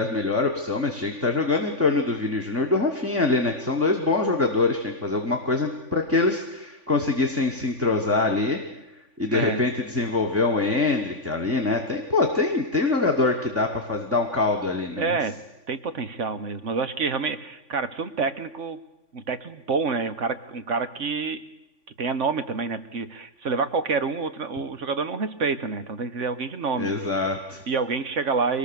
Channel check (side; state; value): left; late; 3.5 ms